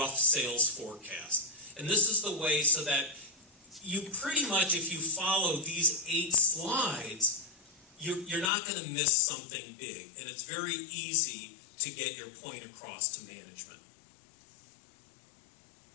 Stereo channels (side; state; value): right; drops out; at 8.5 s